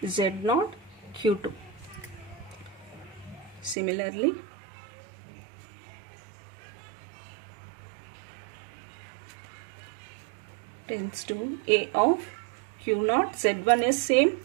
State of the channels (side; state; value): left; drops out; at 3.8 s